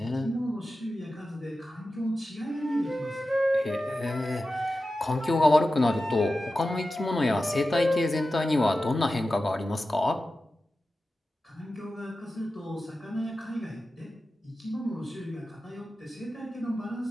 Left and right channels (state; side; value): normal; both; correlation 0.93